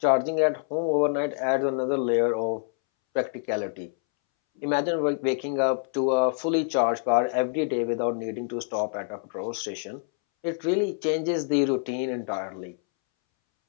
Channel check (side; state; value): right; silent; 61 dB below the other